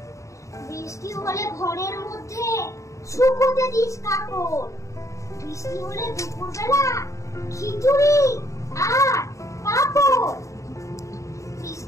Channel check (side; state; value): right; late; 0.15 ms